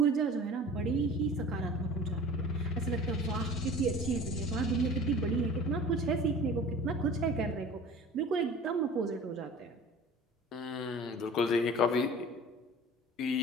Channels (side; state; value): both; normal; correlation 0.42